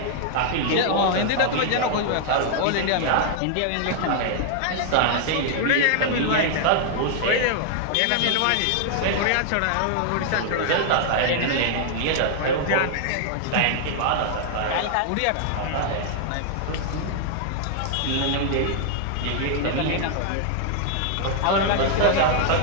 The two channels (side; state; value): both; different; correlation 0.00